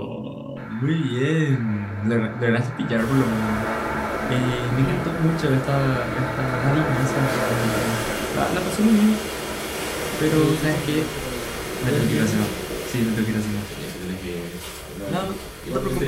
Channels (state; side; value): identical; both; correlation 1.00